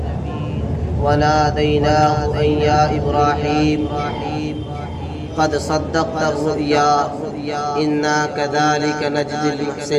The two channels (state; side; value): identical; both; correlation 1.00